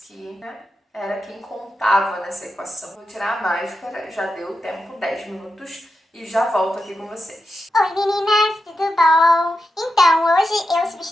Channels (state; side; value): normal; both; correlation 0.88